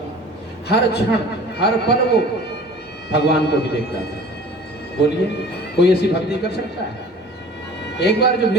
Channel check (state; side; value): normal; both; correlation 0.46